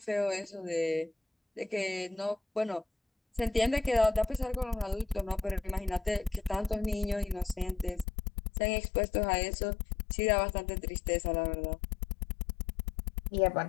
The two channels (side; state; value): right; drops out; at 8.1 s